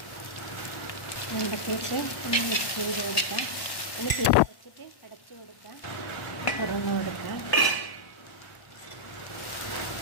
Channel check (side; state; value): right; late; 1.1 ms